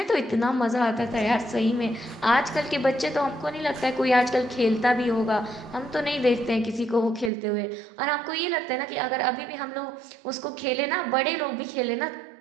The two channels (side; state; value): left; drops out; at 7.3 s